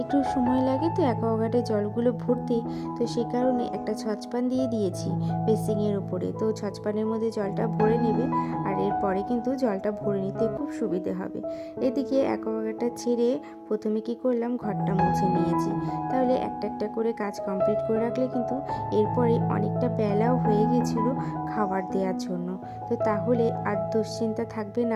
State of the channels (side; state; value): both; identical; correlation 1.00